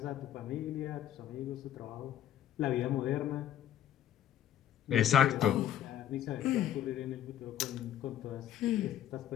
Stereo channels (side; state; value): right; quieter; 11.1 dB